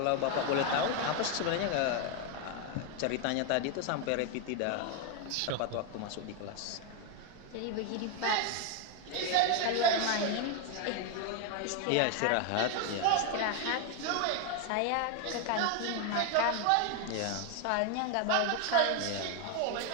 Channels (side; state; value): both; different; correlation 0.01